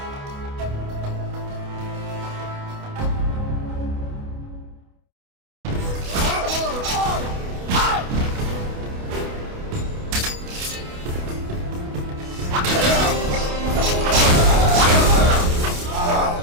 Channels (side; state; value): left; late; 28 ms